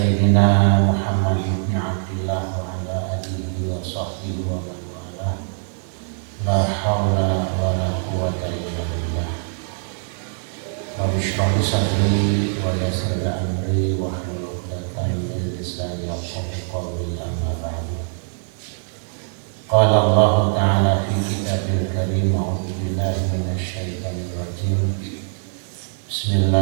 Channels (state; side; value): silent; left; digital silence